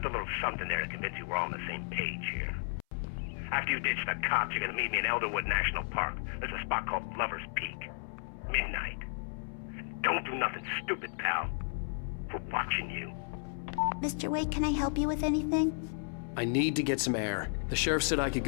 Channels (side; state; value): right; silent; 55 dB below the other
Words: a little something there to convince you we're all on the same page here. After you ditch the cops, you're gonna meet me in Elderwood National Park. There's a spot called Lover's Peak. Midnight. Don't do nothing stupid, pal. We're watching you. Mr. Wake, can I help you with anything? I need to get some air. The sheriff said I could